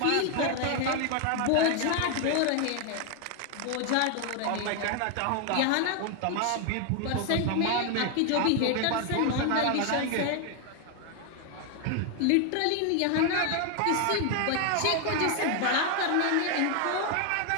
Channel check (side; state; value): both; different; correlation 0.01